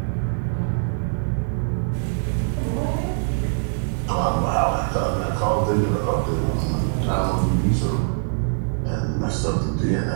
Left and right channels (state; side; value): silent; left; digital silence